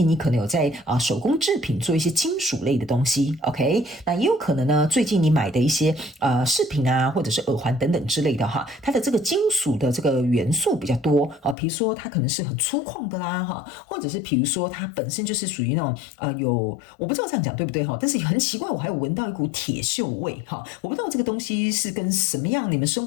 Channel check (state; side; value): drops out; right; at 11.6 s